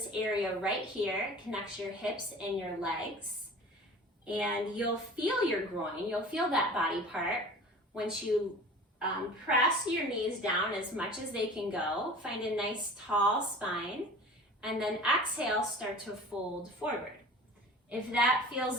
area right here. Connects your hips and your legs. And you'll feel your groin. You'll feel that body part once you press your knees down as much as they can go. Find a nice tall spine. And then exhale, start to fold forward. If that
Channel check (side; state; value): both; normal; correlation 0.41